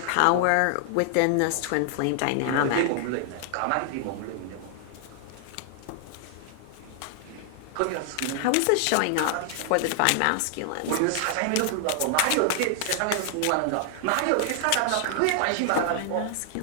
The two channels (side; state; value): both; different; correlation 0.00